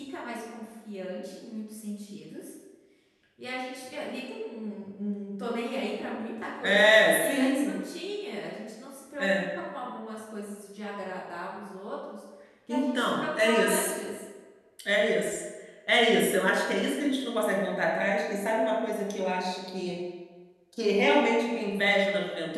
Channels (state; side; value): identical; both; correlation 1.00